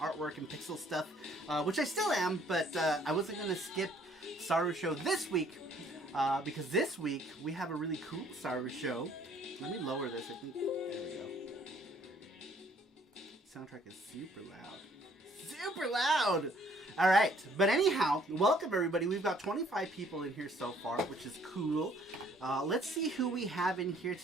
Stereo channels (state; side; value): normal; both; correlation 0.61